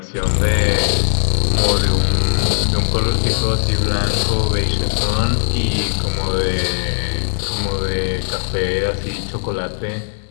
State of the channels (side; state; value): right; silent; digital silence